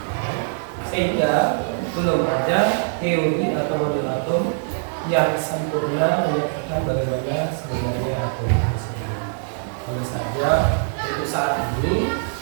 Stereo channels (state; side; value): silent; left; digital silence